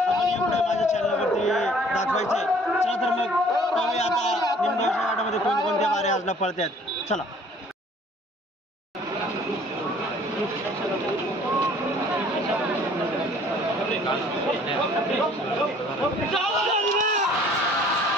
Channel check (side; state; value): both; normal; correlation 0.55